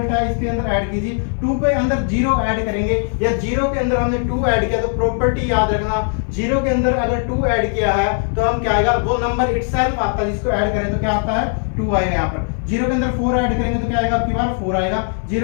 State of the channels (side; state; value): right; silent; 56 dB below the other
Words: है इसके अंदर ऐड कीजिए। 2 के अंदर 0 ऐड करेंगे, या 0 के अंदर हमने 2 ऐड किया तो प्रॉपर्टी याद रखना, 0 के अंदर अगर 2 ऐड किया है तो हम क्या आएगा, वो नंबर इटसेल्फ आता है जिसको ऐड करें तो क्या आता है 2 आएगा। यहाँ पर 0 के अंदर 4 ऐड करेंगे तो क्या आएगा आपकी बार 4 आएगा।